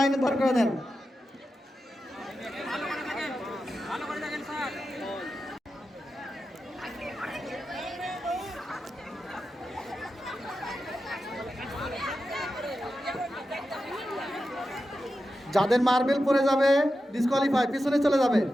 দাঁড় করে দেন। যাদের মার্বেল পড়ে যাবে ডিসকোয়ালিফাই, পিছনে চলে যাবে।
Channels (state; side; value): normal; both; correlation 0.91